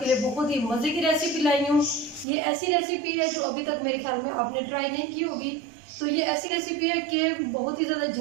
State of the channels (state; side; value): drops out; left; at 2.2 s